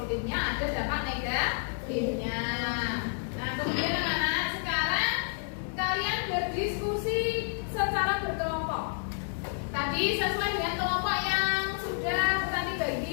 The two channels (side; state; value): right; silent; digital silence